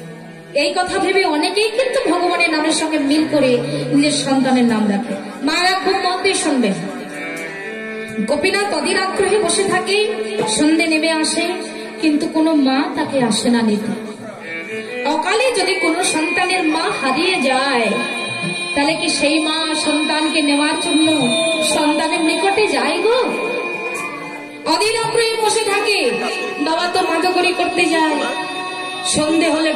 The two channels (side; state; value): both; identical; correlation 1.00